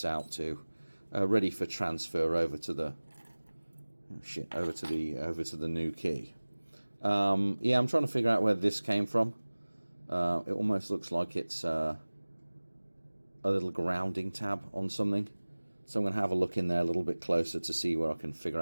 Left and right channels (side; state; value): both; inverted; correlation -1.00